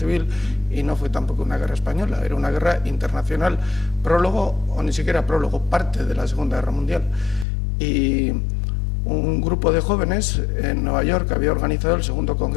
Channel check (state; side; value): drops out; right; at 7.5 s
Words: y no fue tampoco una guerra española, era una guerra internacional, prólogo o ni siquiera prólogo, parte de la Segunda Guerra Mundial. Y un grupo de jóvenes en Nueva York había organizado el segundo